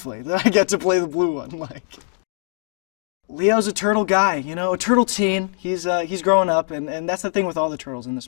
that I get to play the blue one. Like Leo's a turtle guy, a turtle teen. He's growing up, and that's the thing with all the turtles in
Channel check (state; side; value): silent; right; digital silence